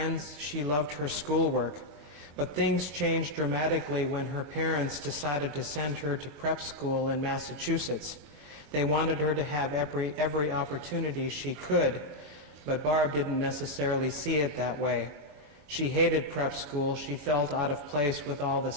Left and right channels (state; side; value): late; left; 21 ms